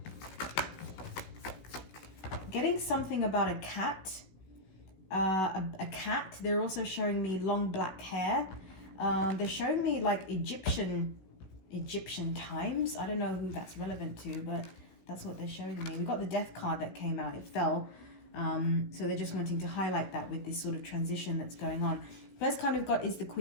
Getting something about a cat. A cat. They're also showing me long black hair. They're showing me like Egyptian times. I don't know who that's relevant to, but that's what they're showing me. We got the death card that came out. It fell. So they're just wanting to highlight that with this sort of transition that's going on. First card we've got is the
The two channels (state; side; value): late; right; 16 ms